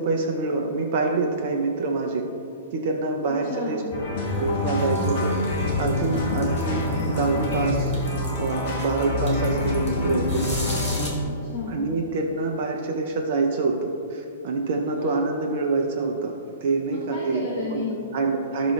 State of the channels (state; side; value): inverted; both; correlation -0.43